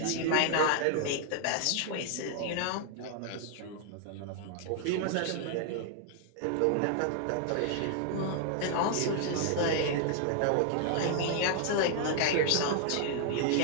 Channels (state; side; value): different; both; correlation 0.00